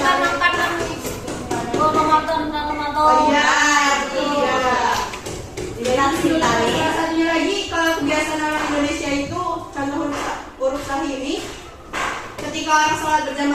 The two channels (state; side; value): identical; both; correlation 1.00